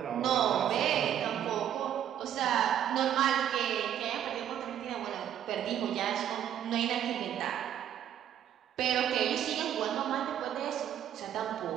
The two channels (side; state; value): left; quieter; 10.2 dB